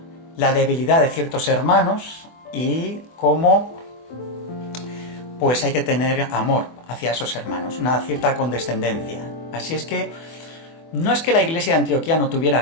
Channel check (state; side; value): late; right; 24 ms